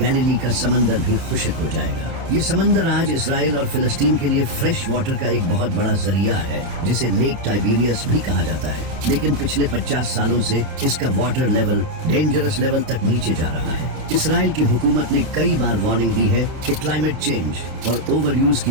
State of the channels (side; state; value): left; late; 29 ms